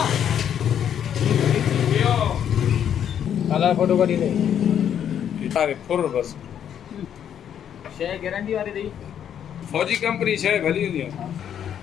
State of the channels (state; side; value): quieter; right; 9.2 dB